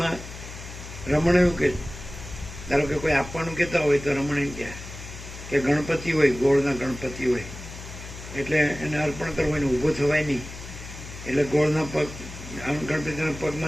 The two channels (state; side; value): noise; left; hum, 12 dB below the sound